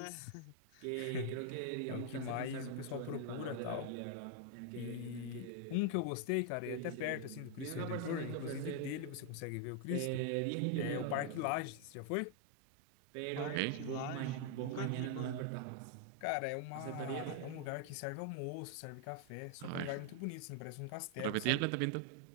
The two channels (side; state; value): both; different; correlation 0.00